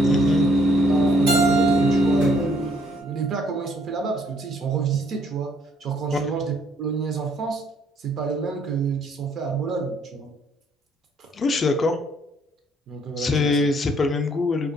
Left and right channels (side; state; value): both; normal; correlation 0.66